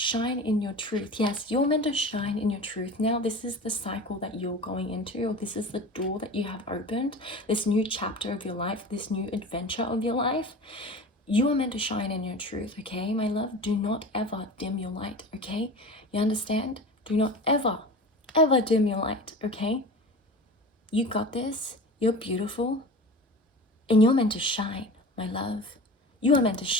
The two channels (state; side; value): normal; both; correlation 0.34